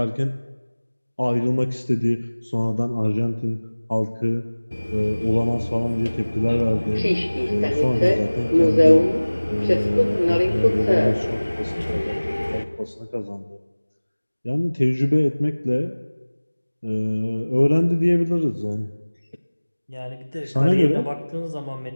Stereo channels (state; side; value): inverted; both; correlation -1.00